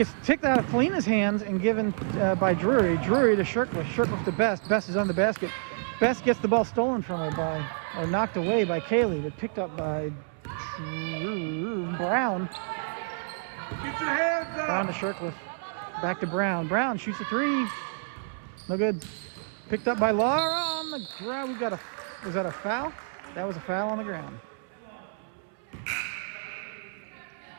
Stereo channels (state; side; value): silent; left; 59 dB below the other